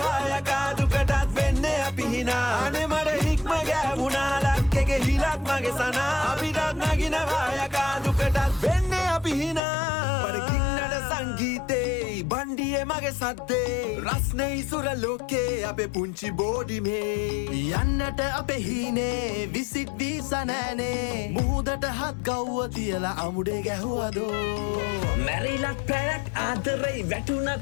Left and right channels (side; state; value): right; drops out; at 9.6 s